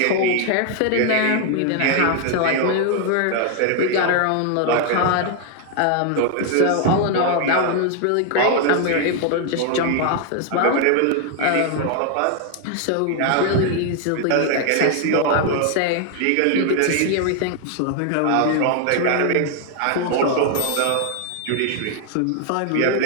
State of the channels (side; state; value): both; different; correlation 0.00